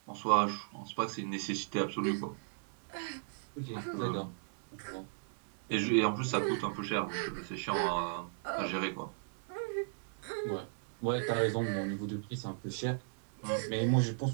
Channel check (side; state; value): left; silent; digital silence